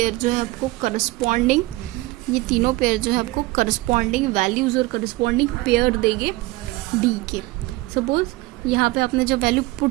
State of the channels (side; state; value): left; quieter; 20.4 dB